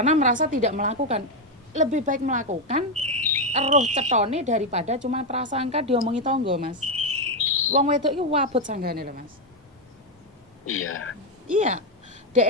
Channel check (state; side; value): normal; both; correlation 0.05